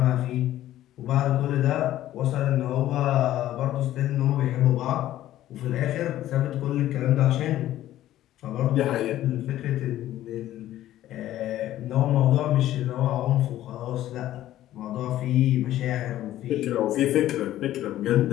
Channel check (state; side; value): quieter; right; 13.5 dB